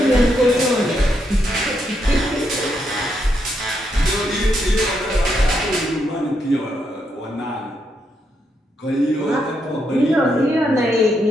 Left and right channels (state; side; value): normal; both; correlation 0.79